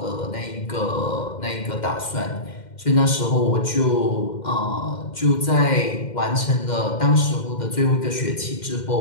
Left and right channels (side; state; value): right; late; 2.1 ms